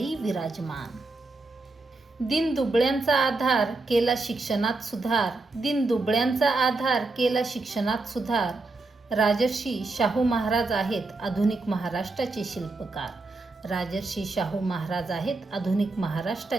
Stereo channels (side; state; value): left; quieter; 3.4 dB